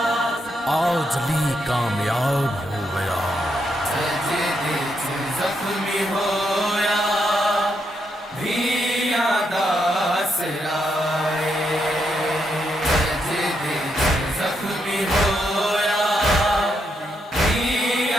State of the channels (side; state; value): both; normal; correlation 0.80